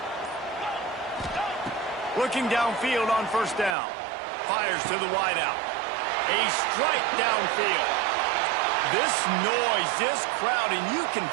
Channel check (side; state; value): left; drops out; at 3.8 s